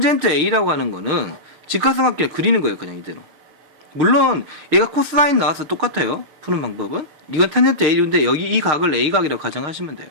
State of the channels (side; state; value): left; late; 6.5 ms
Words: A라고 하는 거는 직각삼각형을 그리는 거예요. 그냥 이대로. 물론 얘가 코사인 나와서 똑같아요. 푸는 방법은. 이건 탄젠트 A인데 여기 이 각을 A각이라고 가정하시면 돼요.